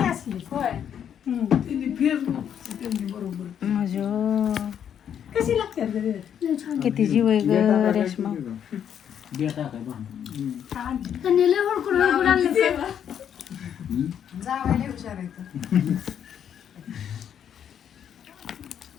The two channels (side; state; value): right; quieter; 8.9 dB